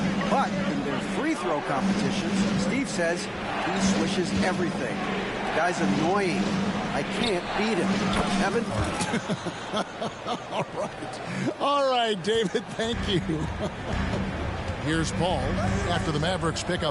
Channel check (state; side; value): identical; both; correlation 1.00